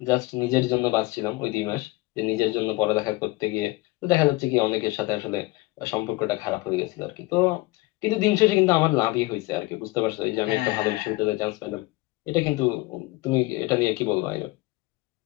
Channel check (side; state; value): right; quieter; 21.0 dB